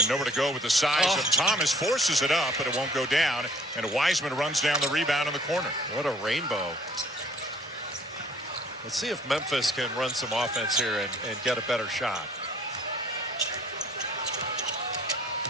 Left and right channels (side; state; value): both; normal; correlation 0.56